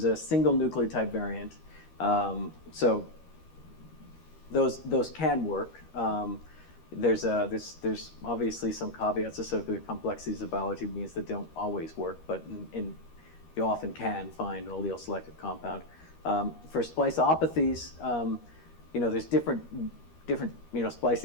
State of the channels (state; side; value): late; right; 13 ms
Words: single nucleotide variant. So those can work. There's obviously some caveats associated with complexities of biology means that don't always work, but you often can find an allele selective compound. For spliceopathies, there's different